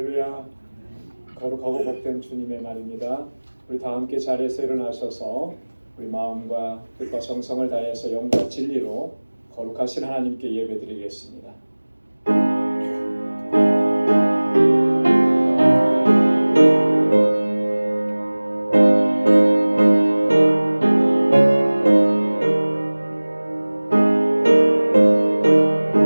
거룩하고 복된 주님의 날입니다. 우리 다 함께 자리에서 일어나셔서 우리 마음과 뜻과 정성을 다해서 영과 진리로 거룩하신 하나님께 예배드리겠습니다.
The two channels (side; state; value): both; inverted; correlation -1.00